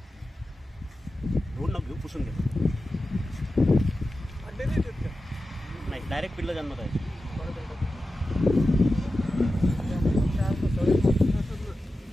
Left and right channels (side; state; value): both; normal; correlation 0.93